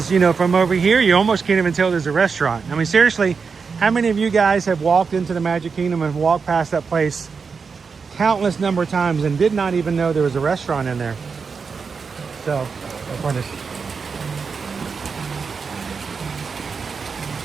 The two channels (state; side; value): quieter; left; 5.4 dB